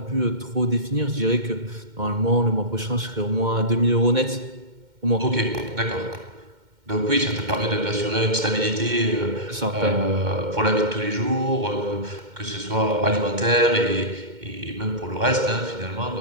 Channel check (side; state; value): left; late; 2.1 ms